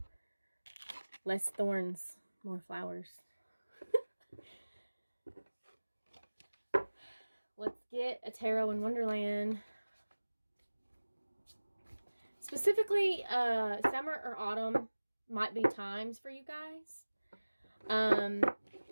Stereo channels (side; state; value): both; inverted; correlation -1.00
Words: Less thorns, more flowers. Let's get a tarot in Wonderland. Specifically, summer or autumn might be times for you guys.